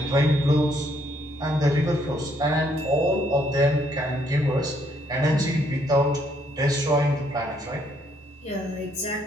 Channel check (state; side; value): normal; both; correlation 0.70